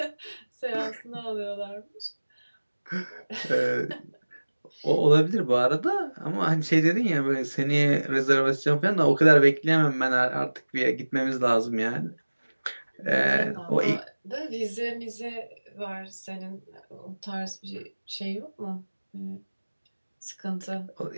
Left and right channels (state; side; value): inverted; both; correlation -1.00